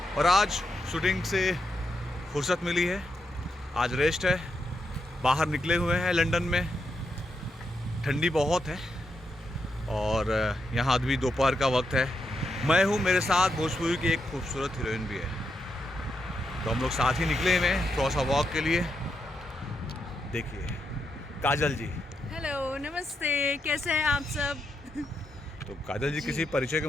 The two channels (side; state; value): both; normal; correlation 0.83